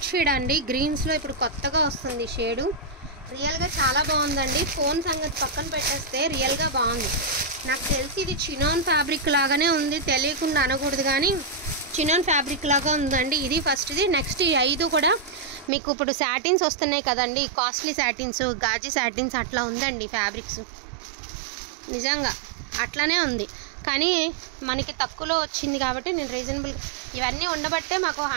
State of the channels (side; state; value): left; drops out; at 15.7 s